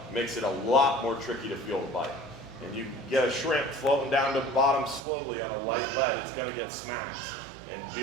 makes it a lot more tricky to feel the bite. And you get a shrimp floating down to the bottom slowly on a light lead, it's gonna get smacked. And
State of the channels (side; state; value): left; drops out; at 5.1 s